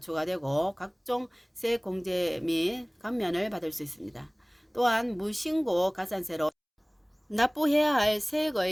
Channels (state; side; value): identical; both; correlation 1.00